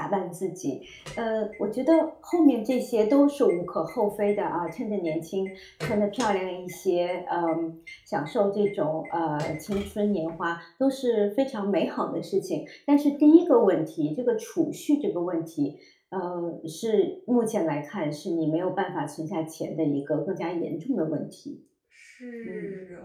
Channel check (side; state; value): both; identical; correlation 1.00